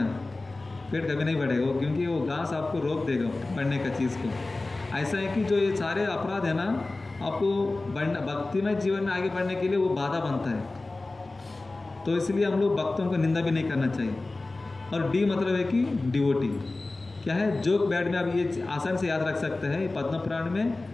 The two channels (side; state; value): right; quieter; 3.2 dB